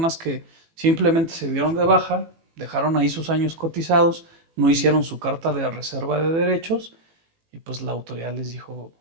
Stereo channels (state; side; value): late; left; 18 ms